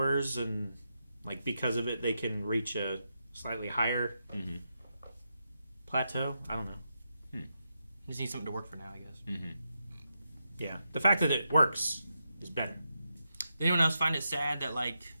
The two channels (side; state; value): both; inverted; correlation -0.85